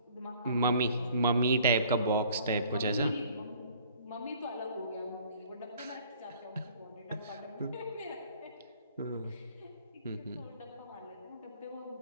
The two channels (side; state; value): both; inverted; correlation -0.55